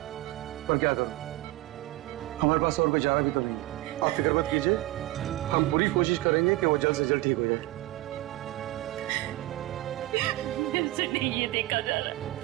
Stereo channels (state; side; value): quieter; left; 18.2 dB